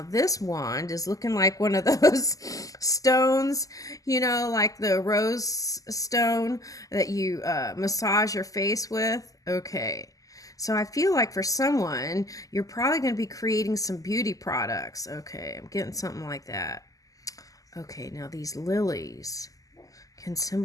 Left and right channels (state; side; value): late; right; 0.17 ms